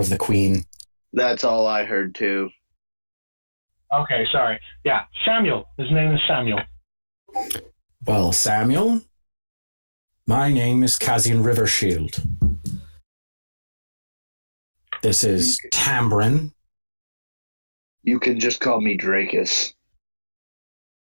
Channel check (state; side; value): inverted; both; correlation -1.00